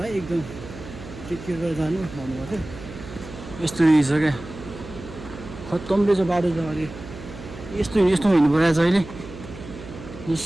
एकदम टेक केयर गरेर जानु भन्नुभएको थियो। यस्तो रहेछ क्या, खत्तम रहेछ बाटो त। अहिले यस्तो हिँड्नु परेको छ अहिले। यस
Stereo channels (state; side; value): noise; right; hum, 14 dB below the sound